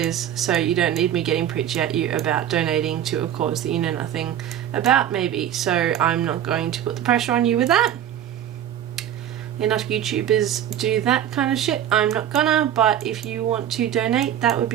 so you don't need me getting preachy at you about donating to a cause that you know nothing about, maybe. So I'm not going to put the pressure on you with that. Enough YouTubers do that kind of shit. I'm not gonna, but if you want to donate, that would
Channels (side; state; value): left; quieter; 10.6 dB